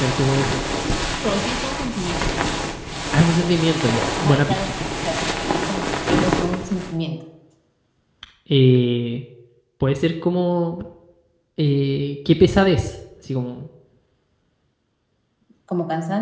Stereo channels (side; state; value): both; identical; correlation 1.00